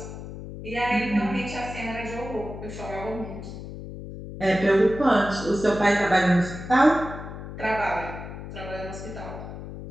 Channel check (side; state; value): left; noise; hum, 10 dB below the sound